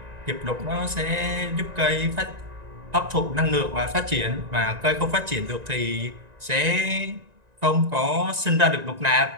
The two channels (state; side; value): late; left; 1.9 ms